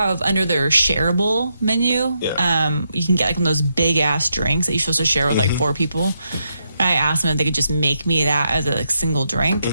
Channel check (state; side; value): inverted; both; correlation -0.81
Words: under their shareable menu. Yeah. You can get one of those big ass drinks that you're supposed to share with 4 people. I asked them if they could just make me that as a single drink,